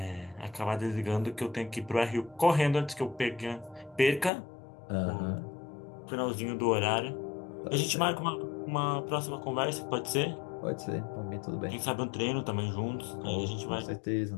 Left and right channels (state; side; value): drops out; right; at 4.3 s